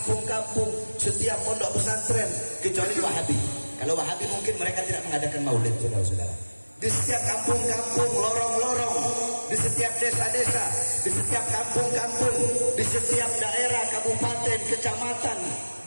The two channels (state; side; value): inverted; both; correlation -1.00